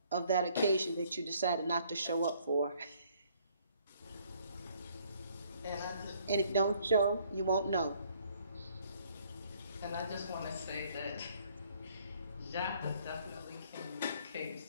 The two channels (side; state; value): both; inverted; correlation -0.63